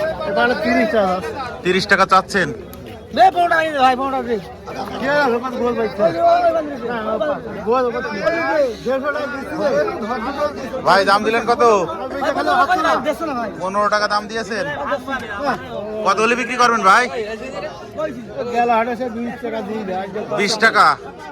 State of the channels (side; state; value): both; identical; correlation 1.00